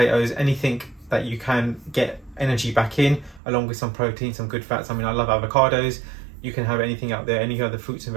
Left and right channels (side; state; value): left; drops out; at 3.4 s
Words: anything that you can get energy back in, along with some protein, some good fats. I mean, I love avocados. You can have anything out there, any other fruits and